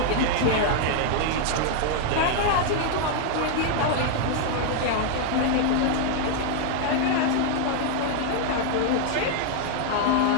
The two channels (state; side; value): different; both; correlation 0.00